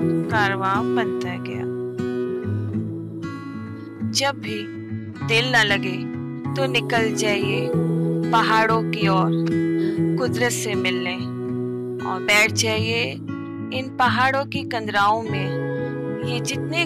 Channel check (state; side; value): identical; both; correlation 1.00